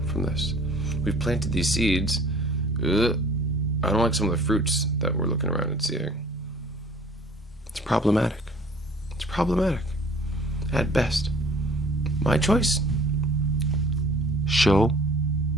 from this? We've planted these seeds. I don't like some of the fruits that we're looking around and seeing. It's problematic. It's problematic. At best. My choice. Show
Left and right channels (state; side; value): normal; both; correlation 0.52